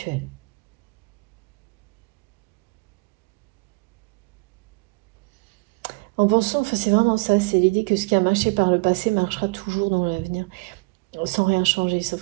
En pensant, enfin, c'est vraiment ça, c'est l'idée que ce qui a marché par le passé marchera toujours dans l'avenir, sans rien changer,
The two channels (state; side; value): quieter; left; 28.8 dB